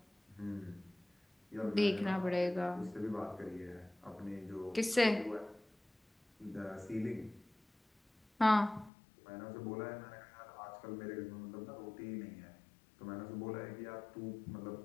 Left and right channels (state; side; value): drops out; right; at 8.9 s